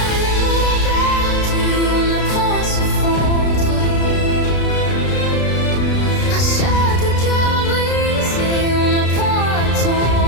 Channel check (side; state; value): right; late; 33 ms